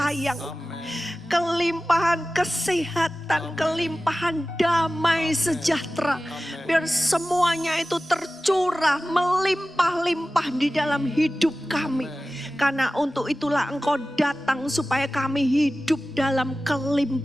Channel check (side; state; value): both; normal; correlation 0.96